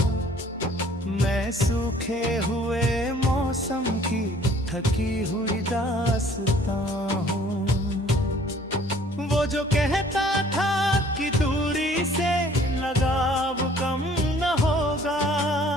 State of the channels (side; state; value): both; normal; correlation 0.55